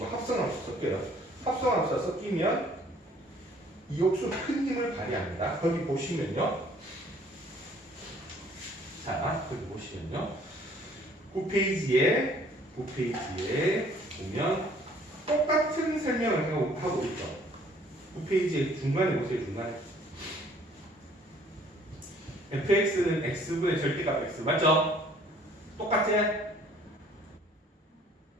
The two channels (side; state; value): both; normal; correlation 0.58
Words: 합성함수 섞여요. 합성함수가 섞이면 이 역수 큰 힘을 발휘합니다. 거기 보시면요. 자, 거기 보시면요. 9페이지에 보면 똑같은 설명을 하고 있죠. 9페이지에 중간에 보세요. 중간에. fx는 x분의 절대값 x. 맞죠? 똑같지?